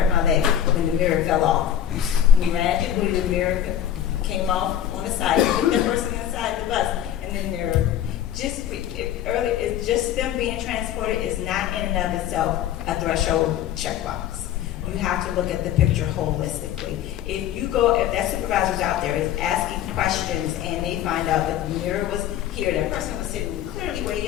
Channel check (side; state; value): right; quieter; 10.8 dB